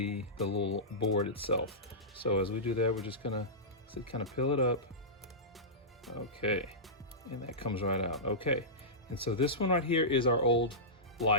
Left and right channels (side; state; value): both; normal; correlation -0.16